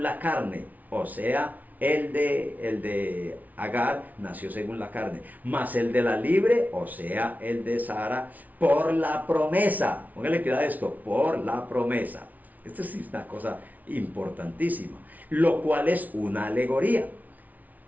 la carne, o sea, el de Agar nació según la carne, mas el de la libre, o sea, el de Sara, por la promesa. Póngale cuidado a esto, por la promesa. Esto es una cosa importantísima, lo cual es una alegoría.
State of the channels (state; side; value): late; left; 0.075 ms